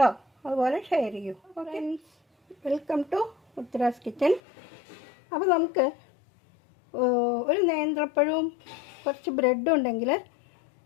അതുപോലെ ഷെയർ ചെയ്യൂ. Okay, welcome to Uttara's kitchen. അപ്പോൾ നമുക്ക് ഒരു നേന്ത്രപ്പഴവും കുറച്ച് ബ്രെഡും ഉണ്ടെങ്കിൽ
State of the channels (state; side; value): drops out; right; at 4.4 s